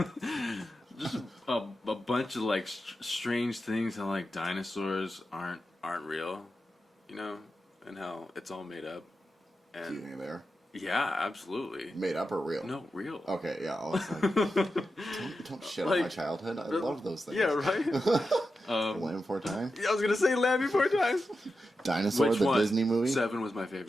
just a bunch of, like, strange things how, like, dinosaurs aren't real, and how it's all made up. And Do you think they are? Yeah, absolutly. Made up or real? No, real. Okay, yeah. I was like, don't shit on my childhood. I love those things. Yeah, right? Land Before Time? Yeah, I was going to say Land Before Time. Dinosaur, Which the one? Disney movie? 7 was my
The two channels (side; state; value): both; normal; correlation 0.90